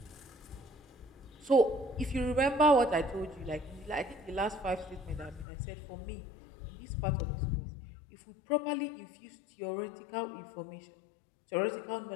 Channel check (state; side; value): drops out; right; at 5.5 s